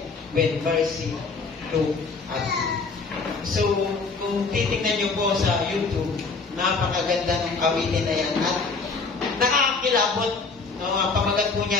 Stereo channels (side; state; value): right; quieter; 4.4 dB